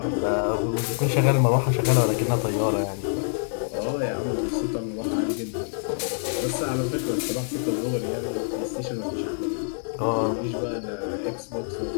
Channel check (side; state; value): right; silent; 61 dB below the other